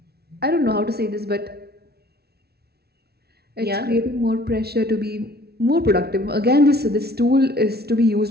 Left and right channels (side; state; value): left; late; 0.46 ms